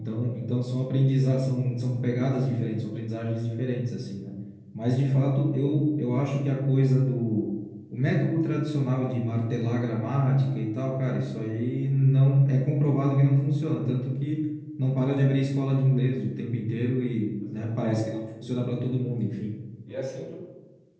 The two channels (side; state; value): both; identical; correlation 1.00